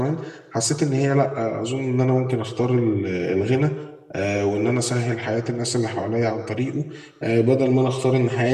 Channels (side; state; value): both; identical; correlation 1.00